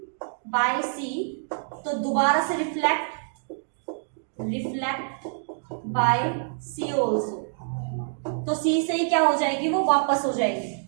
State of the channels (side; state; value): left; silent; digital silence